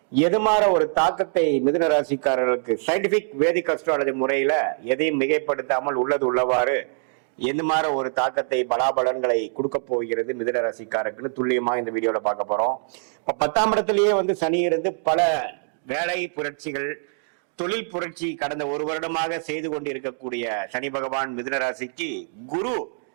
எதுமாற ஒரு தாக்கத்தை மிதுன ராசிக்காரர்களுக்கு சயின்டிபிக் வேதிக் அஸ்ட்ராலஜி முறையில எதையும் மிகைப்படுத்தாமல் உள்ளது உள்ளவாறு எந்த மாதிரி ஒரு தாக்கத்தை பலாபலன்களை கொடுக்க போகிறது மிதுன ராசிக்காரருக்கு துல்லியமா இந்த வீடியோல பார்க்க போறோம். இப்ப 10ஆம் இடத்திலேயே சனி இருந்து பல வேலை புரட்சிகள், தொழில் புரட்சி கடந்த ஒரு வருடமாக செய்து கொண்டு இருக்கக்கூடிய சனி பகவான் மிதுன ராசிக்கு குரு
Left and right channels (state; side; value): silent; left; 62 dB below the other